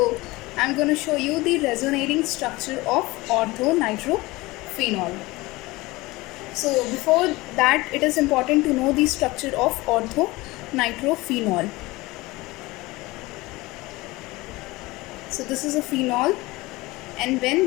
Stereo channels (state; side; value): quieter; right; 21.1 dB